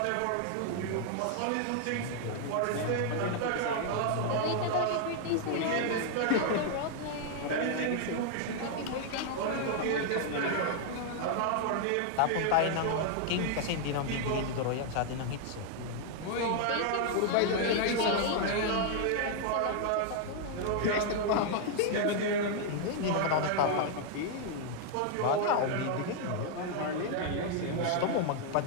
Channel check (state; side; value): different; both; correlation 0.00